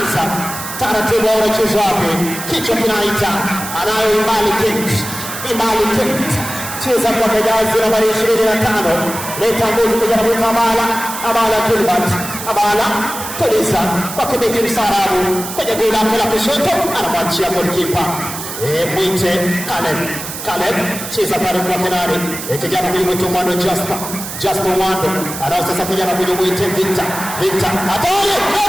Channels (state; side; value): noise; right; hiss, 8 dB below the sound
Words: taratibu, wanacheza wapi, kichwa kinaita, anayo Imbali Kate, cheza kwa jazi nambari 25, leta nguvu kijana mwita Abala Gilbert, Abala tuliza kwa kibeki msarabu kwenye goli lake la kushoto, anamwachia goalkeeper mwite Caleb, cheza pale kwa penali, kijana mwito Mwando Jasper Mwando, anao sasa kijana mwite Victor, hatari,